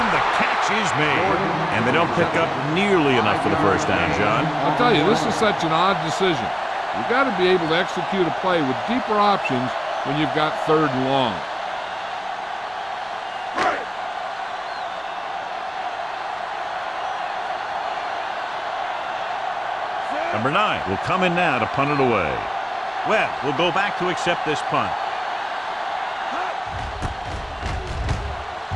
the catch is made. And they don't pick up nearly enough for the first down, John. I'll tell you, this is such an odd decision. You've got to be able to execute a play with deeper options when you've got third and long. Number 9 will come in now to punt it away. Webb will go back to accept this punt.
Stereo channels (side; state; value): both; identical; correlation 1.00